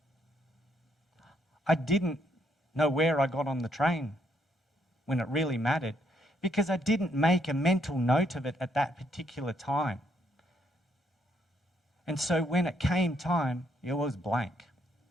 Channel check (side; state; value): both; normal; correlation 0.72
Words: I didn't know where I got on the train when it really mattered because I didn't make a mental note of it at that particular time. And so when it came time, it was blank.